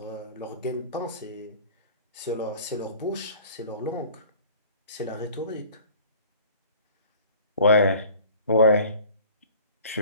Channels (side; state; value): both; inverted; correlation -0.47